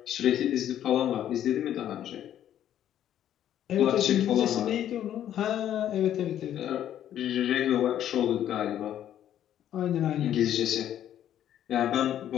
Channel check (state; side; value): quieter; right; 11.0 dB